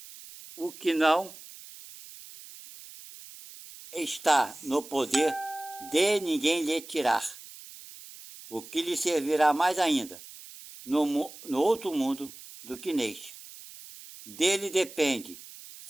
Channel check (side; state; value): right; noise; hiss, 17 dB below the sound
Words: O que não está no poder de ninguém lhe tirar. O que lhe servirá mais ainda no outro mundo do que neste. Dele depende